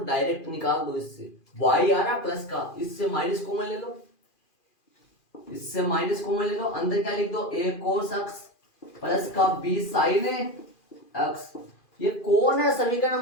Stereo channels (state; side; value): late; right; 2.4 ms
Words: निकाल दो, इससे y आ रहा प्लस का, इससे माइनस कॉमन ले लो, इससे माइनस कॉमन ले लो, अंदर क्या लिख दो a cos x प्लस का b sin x। ये कौन है? समीकरण